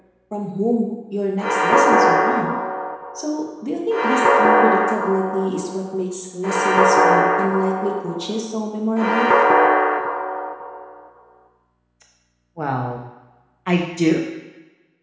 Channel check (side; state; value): both; identical; correlation 1.00